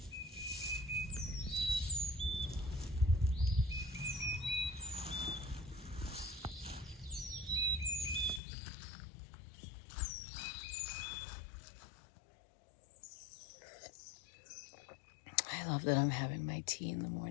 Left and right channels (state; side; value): drops out; right; at 8.4 s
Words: I love that I'm having my tea in the